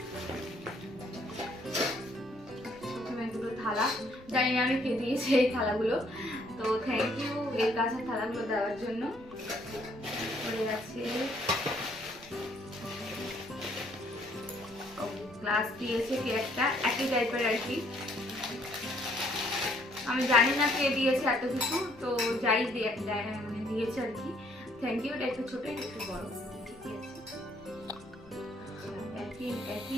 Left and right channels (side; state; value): left; noise; rumble, 24 dB below the sound